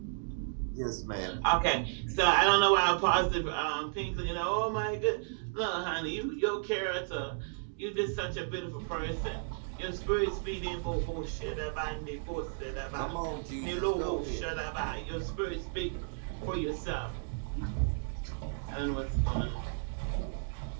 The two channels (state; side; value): silent; left; digital silence